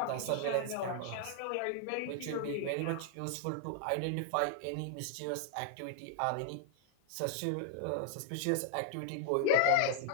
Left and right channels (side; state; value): both; different; correlation 0.00